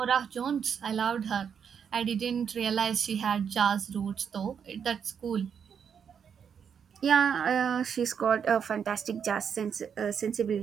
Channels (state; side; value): quieter; left; 7.4 dB